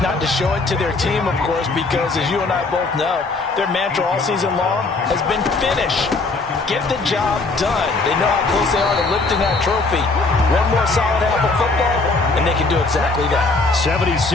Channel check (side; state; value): right; quieter; 3.6 dB